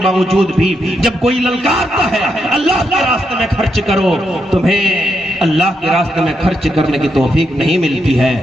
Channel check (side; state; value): both; normal; correlation 0.81